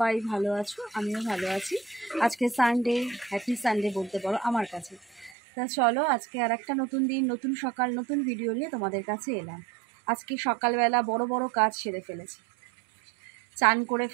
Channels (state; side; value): drops out; left; at 5.4 s